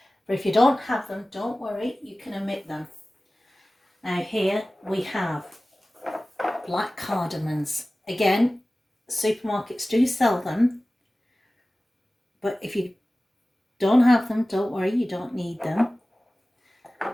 but if you don't have them, don't worry, you can omit them. Now here we have black cardamoms. Again, supermarkets do sell them, but if you don't have them, don't worry, you don't need them.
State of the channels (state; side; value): normal; both; correlation 0.97